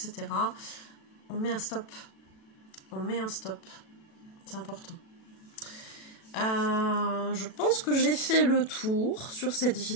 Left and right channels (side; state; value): right; late; 36 ms